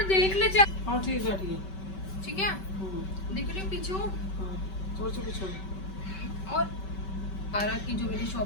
देख ले जा। हाँ ठीक है ठीक है। ठीक है, दिख रही पीछे हो। हाँ थोड़ा सा पीछे। और पारा की जो मैंने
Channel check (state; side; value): late; right; 5.2 ms